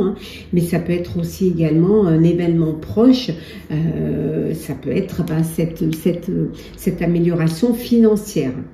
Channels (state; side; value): identical; both; correlation 1.00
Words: mais ça peut être aussi également un événement proche, ça peut être cette amélioration financière.